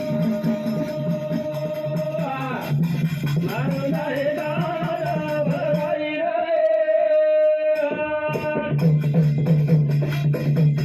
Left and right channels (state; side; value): identical; both; correlation 1.00